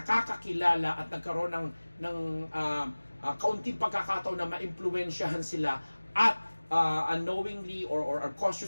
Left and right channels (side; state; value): both; inverted; correlation -1.00